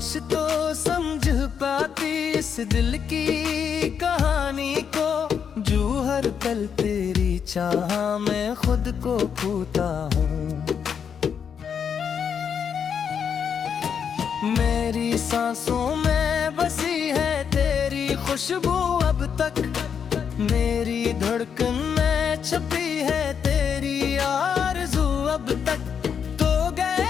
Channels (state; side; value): quieter; right; 7.3 dB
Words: तो समझ पाती इस दिल की कहानी को, जो हर पल तेरी चाह में खुद को खोता हूँ। मेरी सांसों में बसी है तेरी खुशबू अब तक, मेरी धड़कन में छपी है तेरी आरज़ू अब तक। तो